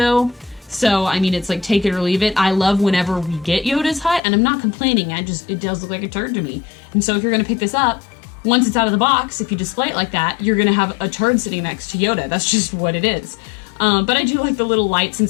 So, I mean, it's like take it or leave it. I love whenever we get Yoda's hut, and I'm not complaining. It does look like a turd to me. And so if you're going to pick this up, once it's out of the box, if you display it like that, you're going to have a turd sitting next to Yoda. That's just what it is. But I do like the little lights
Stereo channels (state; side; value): drops out; right; at 4.2 s